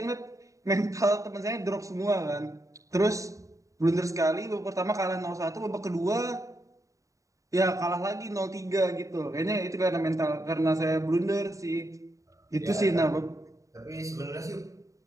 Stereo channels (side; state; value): left; late; 0.16 ms